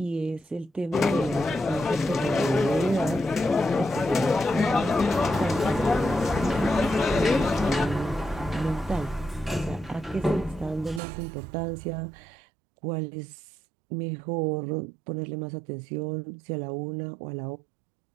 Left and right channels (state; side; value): drops out; left; at 11.0 s